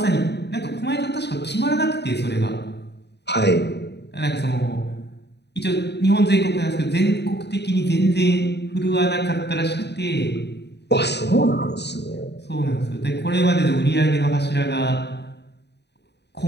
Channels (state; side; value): late; right; 0.49 ms